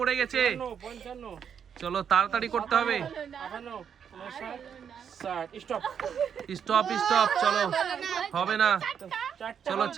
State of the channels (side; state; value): left; quieter; 7.8 dB